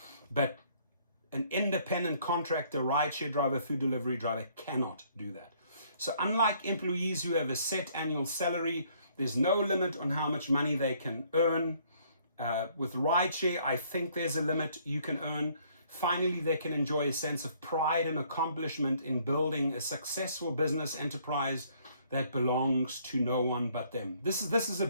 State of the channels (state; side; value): inverted; both; correlation -0.63